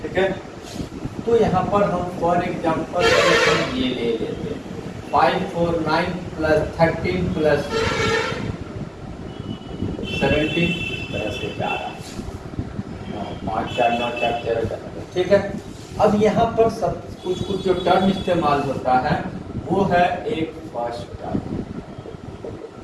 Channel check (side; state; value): both; identical; correlation 1.00